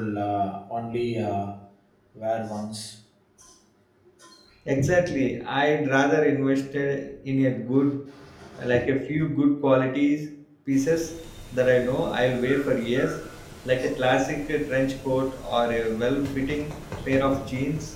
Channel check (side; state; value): both; identical; correlation 1.00